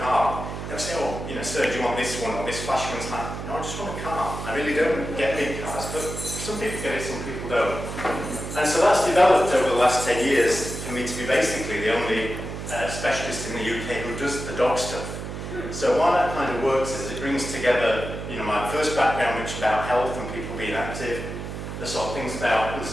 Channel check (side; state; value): right; noise; hum, 7 dB below the sound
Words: they'll say, oh, sir, do you want this one or this flash one? It's like, no, I just want a car. I really don't get big cars, but some people get it, some people don't. And so that's developed over the last 10 years for me to be basically the only specialist in the UK who does the dog stuff. So why that kind of works is it brings together, my first background, which is about health and people being active, the sort of things about